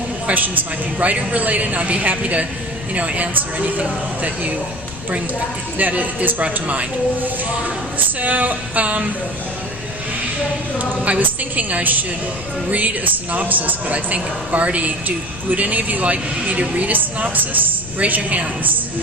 questions might be writer related, and I'd be happy to answer anything that you bring that is brought to mind. So I was thinking I should read a synopsis, but I think Barty, would any of you like me to read a synopsis? Raise your hands.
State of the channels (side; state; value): left; noise; rumble, 14 dB below the sound